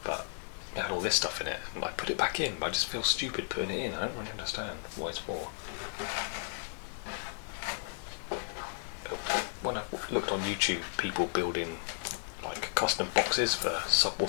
but it had all this stuff in it, and I put it back in, but I just feel stupid putting it in. I don't really understand what it's for. When I looked on YouTube, people building like custom boxes for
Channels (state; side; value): silent; right; digital silence